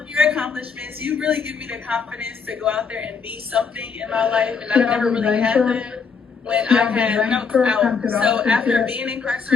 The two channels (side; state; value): right; quieter; 5.5 dB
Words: your accomplishments, you really give me the confidence to go out there and be something in my life, and I've never really had that when I was out. So after being